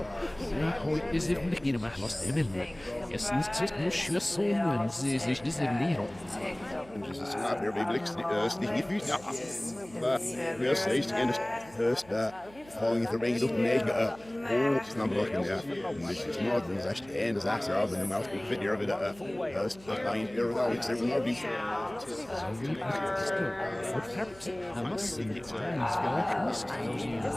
falling the rain up mega oh snap looking there which is more than that and as after of the mouth big video of it line here without it's there more be I must say that Stan's very optimistic. He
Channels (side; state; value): right; noise; hum, 23 dB below the sound